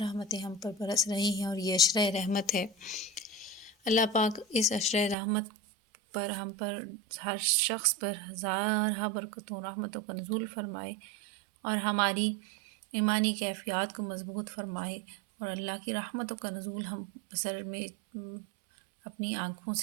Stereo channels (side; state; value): left; drops out; at 5.2 s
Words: ہم پر برس رہی ہیں، اور یہ عشرہ رحمت ہے۔ اللہ پاک اس عشرہ رحمت پر ہم پر ہر شخص پر ہزارہ برکتوں رحمتوں کا نزول فرمائے، اور ہماری ایمانی کیفیات کو مضبوط فرمائے، اور اللہ کی رحمتوں کا نزول ہم بصر میں اپنی آنکھوں